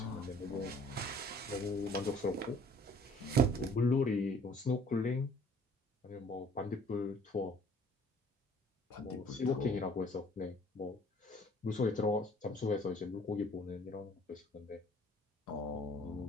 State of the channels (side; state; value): both; normal; correlation 0.55